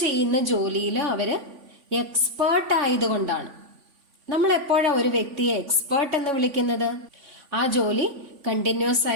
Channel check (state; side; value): late; left; 3.5 ms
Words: ചെയ്യുന്ന ജോലിയിൽ അവര് എക്സ്പേർട്ട് ആയതുകൊണ്ടാണ്. നമ്മൾ എപ്പോഴാണ് ഒരു വ്യക്തിയെ എക്സ്പേർട്ട് എന്ന് വിളിക്കുന്നത്? ആ ജോലി കണ്ടിന്യൂസ്